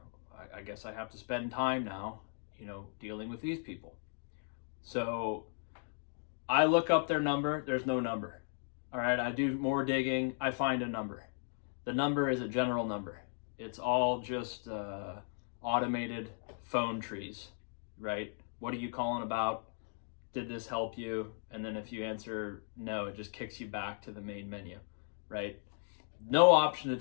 I guess I have to spend time now, dealing with these people. So I look up their number. There's no number. All right, I do more digging. I find a number. The number is a general number. It's all just automated phone trees, right? What are you calling about? Did this help you? And then if you answer no, it just kicks you back to the main menu, right? No option to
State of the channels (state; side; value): silent; right; digital silence